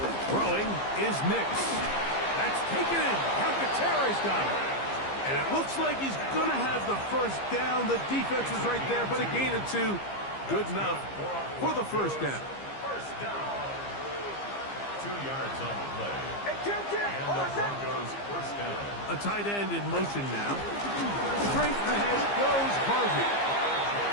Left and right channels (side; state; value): right; late; 15 ms